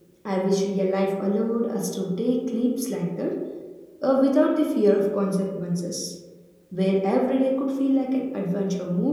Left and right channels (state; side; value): identical; both; correlation 1.00